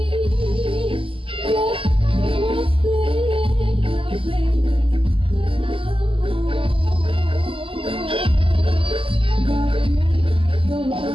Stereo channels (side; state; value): left; late; 0.26 ms